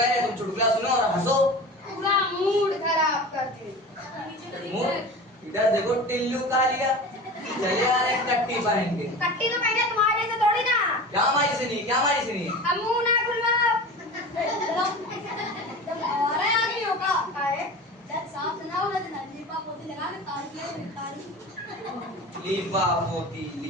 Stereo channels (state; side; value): normal; both; correlation 0.34